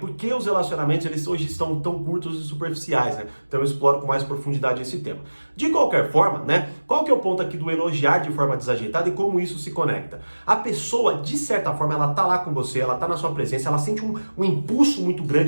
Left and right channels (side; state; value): both; inverted; correlation -1.00